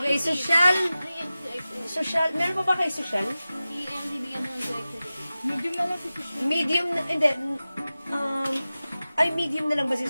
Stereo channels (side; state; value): both; inverted; correlation -0.96